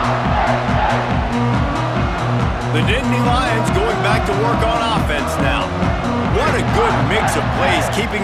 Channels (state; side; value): identical; both; correlation 1.00